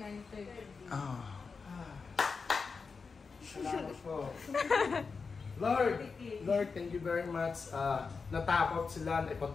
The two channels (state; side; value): quieter; right; 4.9 dB